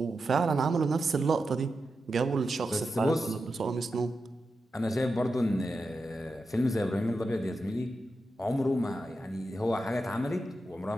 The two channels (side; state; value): both; normal; correlation 0.89